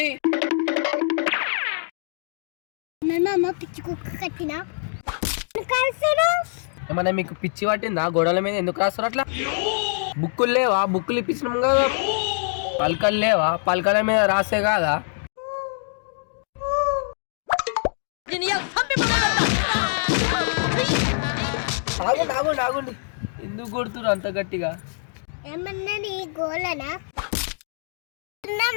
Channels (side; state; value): right; silent; digital silence